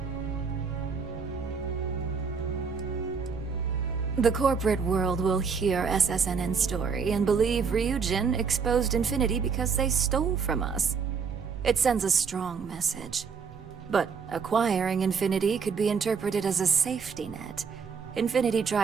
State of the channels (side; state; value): left; quieter; 5.8 dB